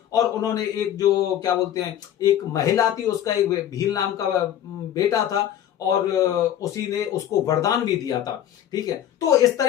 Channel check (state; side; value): quieter; right; 10.8 dB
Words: और उन्होंने एक जो क्या बोलते हैं, एक महिला थी, उसका एक भील नाम का बेटा था और उसी ने उसको वरदान भी दिया था, ठीक है। तो इस